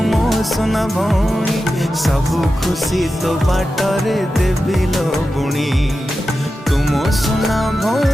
सबु खुशी तो बाटरे देवी लो बुणी तुम सुना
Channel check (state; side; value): normal; both; correlation 0.92